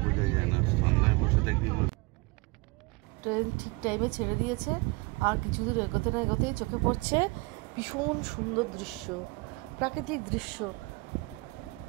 বোঝা যায় না, ঠান্ডায় বসে থাকলে। ট্রেন ঠিক টাইমে ছেড়ে দিয়েছে। আর কিছু দূর এগোতে না এগোতেই চোখে পড়ছে ভীষণ সুন্দর দৃশ্য, প্রাকৃতিক দৃশ্য।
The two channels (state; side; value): quieter; left; 25.5 dB